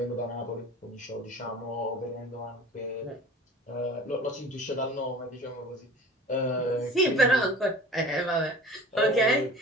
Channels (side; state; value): both; normal; correlation 0.41